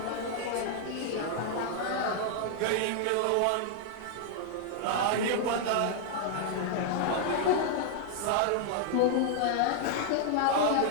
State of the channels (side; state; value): both; different; correlation -0.01